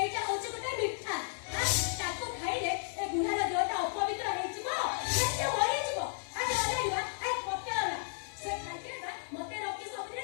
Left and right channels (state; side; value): silent; right; digital silence